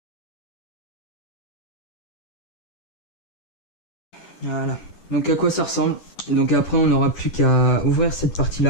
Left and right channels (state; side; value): late; right; 10 ms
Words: Voilà. Donc à quoi ça ressemble. Donc après on n'aura plus qu'à ouvrir cette partie